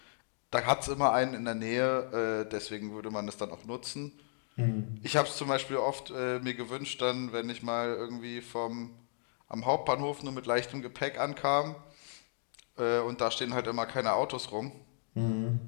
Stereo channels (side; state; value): right; silent; digital silence